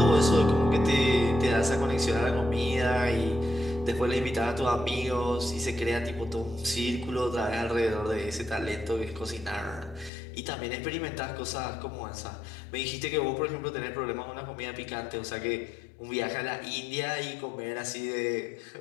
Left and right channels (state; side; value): drops out; right; at 10.1 s